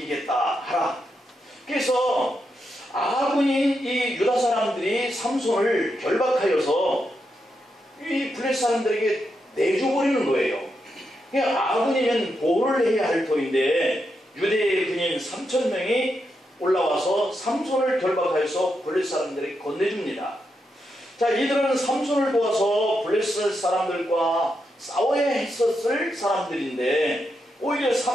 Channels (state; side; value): normal; both; correlation 0.84